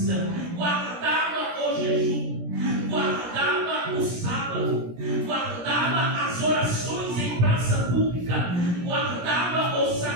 guardava o jejum, guardava o sábado, guardava as orações em praça pública, guardava os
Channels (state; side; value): late; left; 17 ms